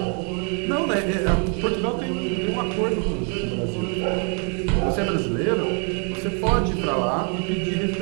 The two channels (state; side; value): quieter; left; 38.2 dB